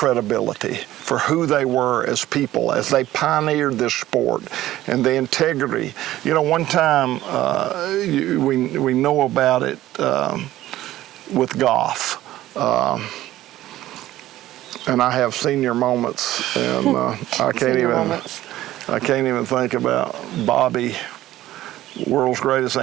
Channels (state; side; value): quieter; left; 14.8 dB